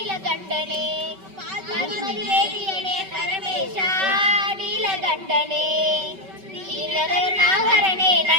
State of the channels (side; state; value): left; late; 5.2 ms